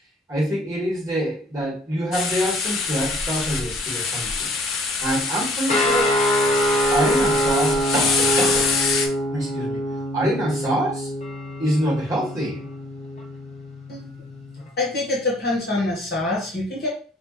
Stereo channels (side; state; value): both; normal; correlation 0.58